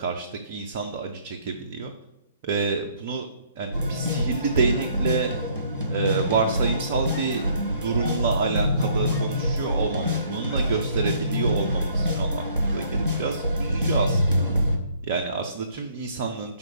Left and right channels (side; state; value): both; inverted; correlation -0.62